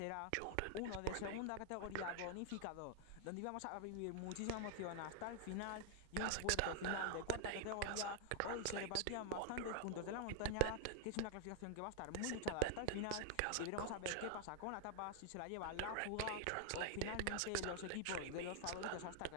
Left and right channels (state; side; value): different; both; correlation 0.00